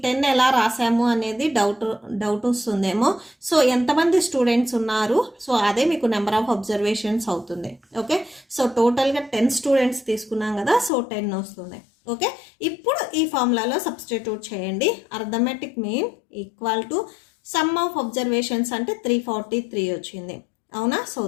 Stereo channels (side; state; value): right; drops out; at 10.9 s